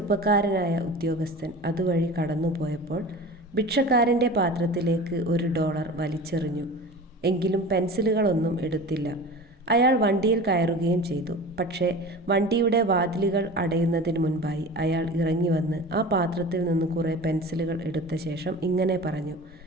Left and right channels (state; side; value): normal; both; correlation 0.35